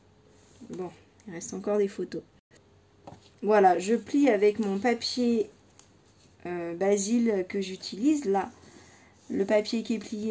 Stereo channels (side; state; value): both; identical; correlation 1.00